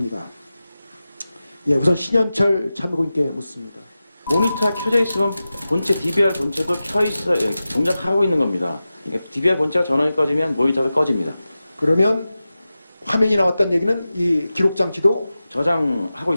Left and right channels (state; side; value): inverted; both; correlation -0.94